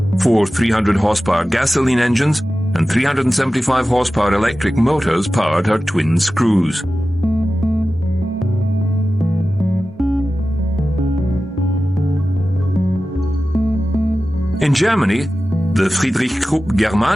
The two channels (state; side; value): normal; both; correlation 0.95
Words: 4 300 horsepower gasoline engines and 375 horsepower electric motors powered her twin screws. In Germany, the Friedrich Krupp